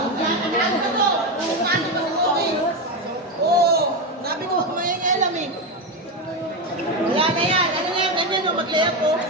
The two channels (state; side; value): normal; both; correlation 0.12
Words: Sabi ko, may alam eh. Wala na yan. Ano na yan? Ganyan o, mag-layup po.